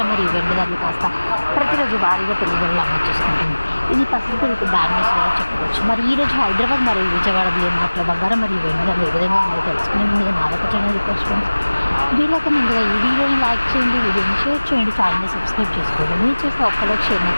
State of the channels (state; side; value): inverted; both; correlation -1.00